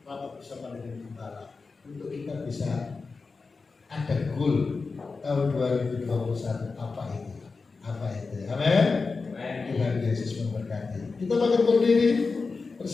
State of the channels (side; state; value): right; quieter; 4.3 dB